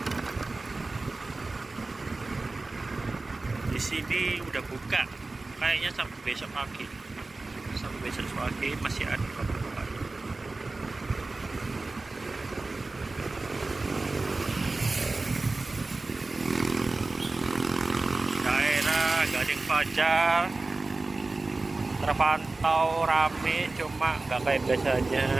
Di sini udah buka, kayaknya sampai besok pagi, masih ada bapak-bapak. Gading Fajar terpantau rame, cuma nggak kayak biasanya.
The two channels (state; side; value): quieter; left; 3.4 dB